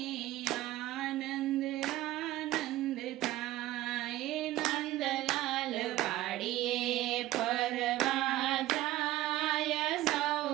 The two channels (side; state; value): left; quieter; 15.8 dB